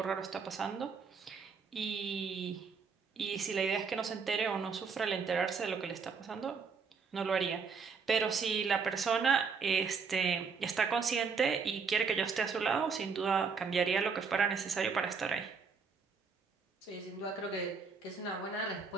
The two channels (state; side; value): quieter; left; 5.4 dB